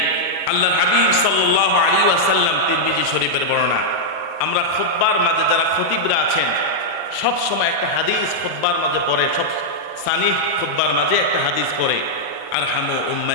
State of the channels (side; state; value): both; normal; correlation -0.04